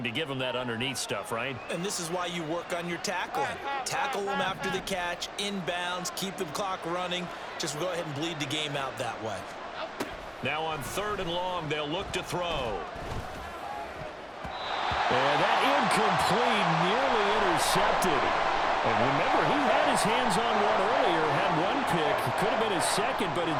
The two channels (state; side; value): identical; both; correlation 1.00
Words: to give them that underneath stuff, right? And this is why you work on your tackling. Tackle them after the catch, inbounds, keep the clock running. Just go ahead and bleed the game out that way. Now on 3rd and long, they'll look to throw. And that incomplete, nearly intercepted. And remember, he had his hands on one earlier, had one pick. Could have been his second, but